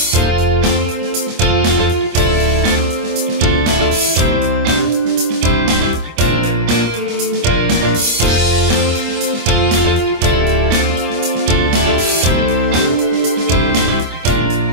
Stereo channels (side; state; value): left; late; 25 ms